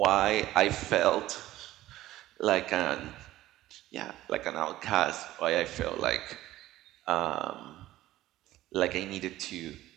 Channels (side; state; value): left; quieter; 15.3 dB